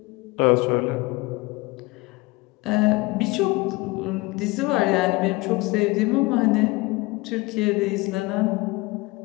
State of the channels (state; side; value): quieter; right; 22.6 dB